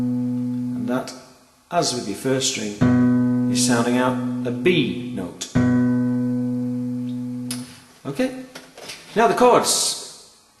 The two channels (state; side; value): identical; both; correlation 1.00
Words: that, as with your first string, is sounding out a B note. Okay, now the chords.